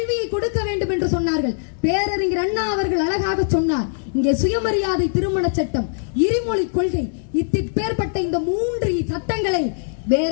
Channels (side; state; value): right; silent; digital silence